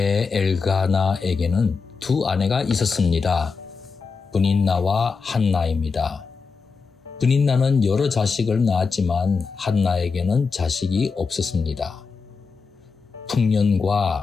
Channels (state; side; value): quieter; right; 5.0 dB